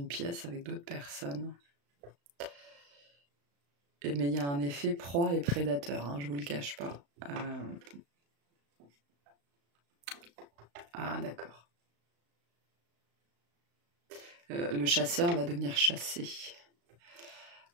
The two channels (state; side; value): late; left; 35 ms